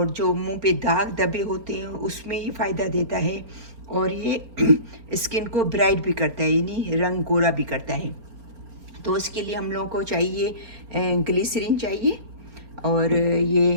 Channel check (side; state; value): left; late; 4.4 ms